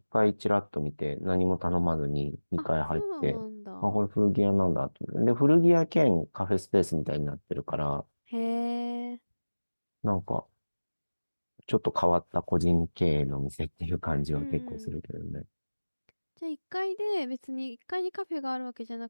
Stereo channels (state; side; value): inverted; both; correlation -1.00